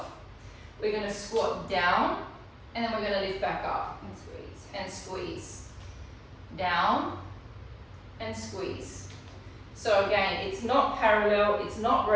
We're going to squat down, and then we're going to lift back up and squeeze, and squeeze. Down, and squeeze. So again, it's not parallel, it's not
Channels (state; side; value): identical; both; correlation 1.00